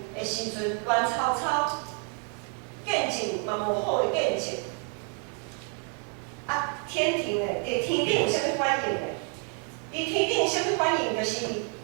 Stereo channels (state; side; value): quieter; left; 37.7 dB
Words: 的时阵，乱操见证嘛无好的见证。啊，天庭的伫天顶有啥物反应呢？伫天顶有啥物反应？就是